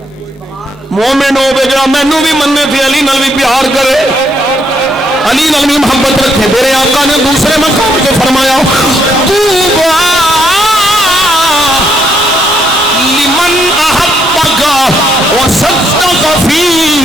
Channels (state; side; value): normal; both; correlation 0.73